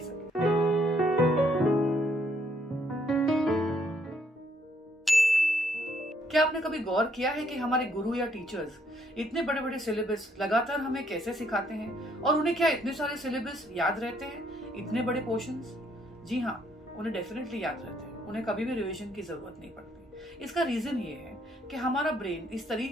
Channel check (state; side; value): normal; both; correlation 0.69